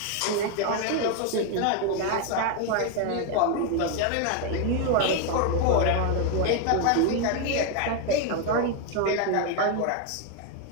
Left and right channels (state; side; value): different; both; correlation 0.01